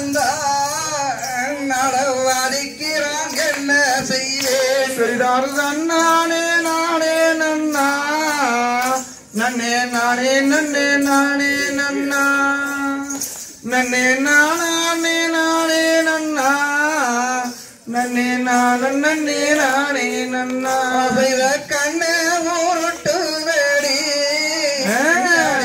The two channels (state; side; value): identical; both; correlation 1.00